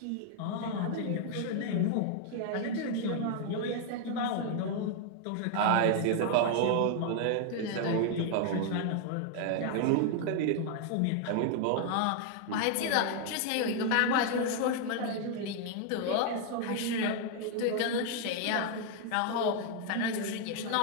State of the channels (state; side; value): different; both; correlation 0.00